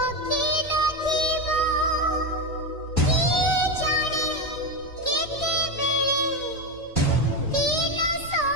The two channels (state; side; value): normal; both; correlation 0.13